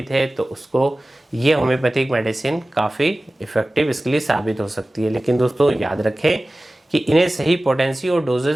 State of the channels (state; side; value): normal; both; correlation 0.97